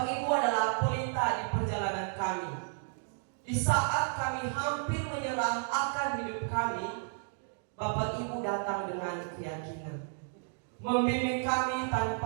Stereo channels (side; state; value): left; silent; 56 dB below the other